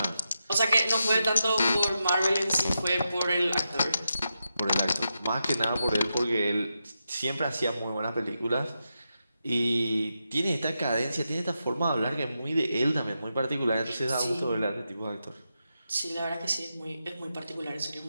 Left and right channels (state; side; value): inverted; both; correlation -0.87